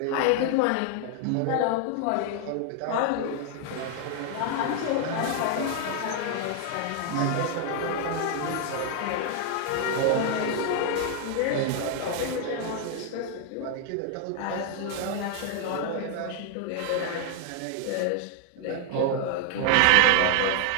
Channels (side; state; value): both; different; correlation 0.00